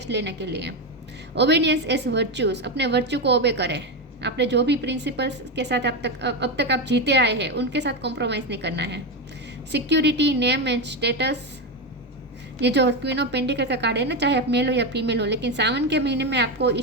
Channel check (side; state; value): both; normal; correlation 0.12